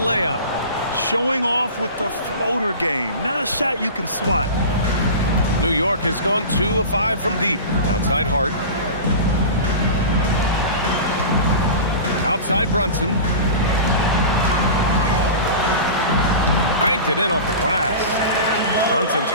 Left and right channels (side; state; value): both; inverted; correlation -0.32